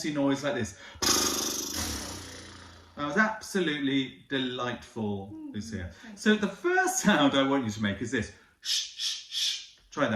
noise like this. That was absolutely delightful, Lucia. So the first sound I want you to make is this. Shh, shh, shh. Try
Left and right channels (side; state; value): both; identical; correlation 1.00